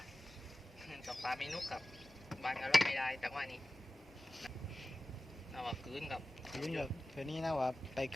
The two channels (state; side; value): normal; both; correlation 0.96